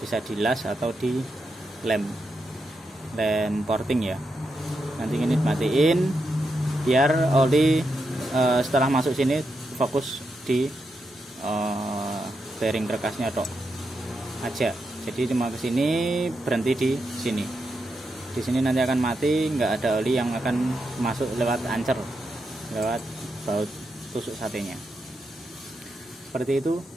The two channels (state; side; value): normal; both; correlation 0.85